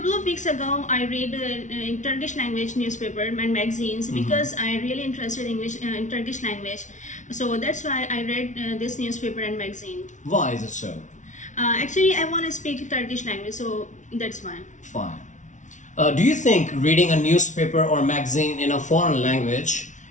of weeks ago I read in Turkish language newspaper and magazines because I really interested in Turkish language. So that's why I read this newspaper and magazine. Why is it so? Actually, I want to speak Turkish language, so that's why. Fine. Do you think reading a newspaper or magazine in a foreign language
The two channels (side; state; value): right; late; 0.36 ms